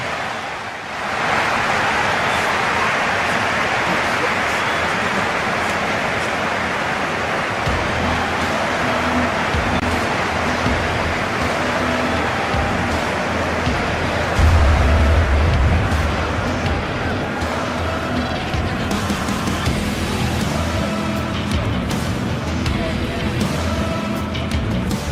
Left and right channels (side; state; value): both; identical; correlation 1.00